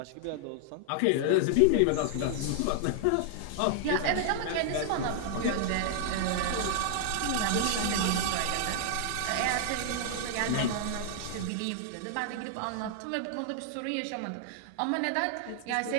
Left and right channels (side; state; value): both; different; correlation 0.00